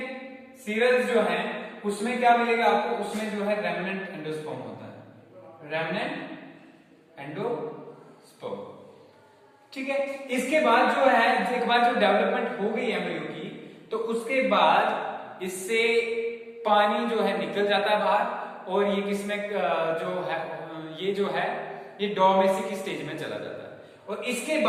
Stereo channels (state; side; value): identical; both; correlation 1.00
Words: सीरियल्स जो हैं उसमें क्या मिलेगा आपको, उसमें जो है रेमनेंट एंडोस्पर्म होता है, रेमनेंट एंडोस्पर्म। ठीक है, इसके बाद जो है एक बार जो डेवलपमेंट हो गई एम्ब्रियो की, तो उसके बाद इससे पानी जो है निकल जाता है बाहर और ये किसमें जो है ये डोमेस्टिक स्टेज में चला जाता है। और इसके